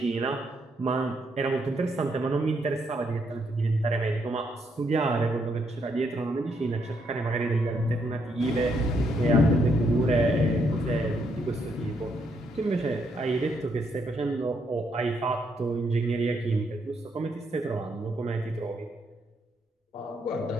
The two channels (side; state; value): both; normal; correlation 0.75